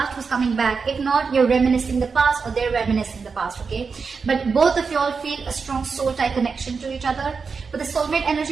who's coming back. If not, you're reminiscing the past or they're reminiscing the past, okay? But both of you all feel a strong soul tie connection to each other. With the soulmate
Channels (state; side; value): quieter; left; 5.1 dB